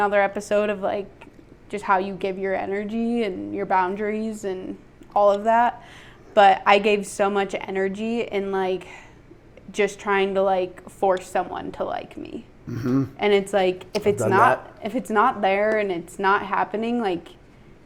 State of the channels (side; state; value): both; identical; correlation 1.00